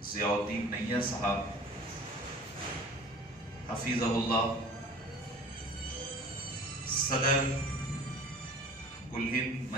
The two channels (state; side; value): normal; both; correlation 0.44